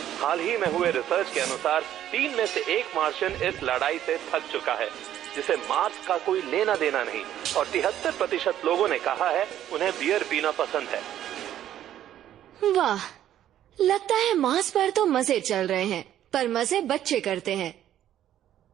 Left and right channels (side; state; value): left; quieter; 11.6 dB